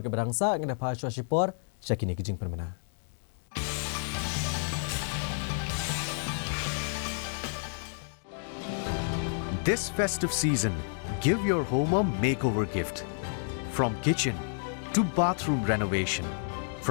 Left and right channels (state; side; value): silent; right; digital silence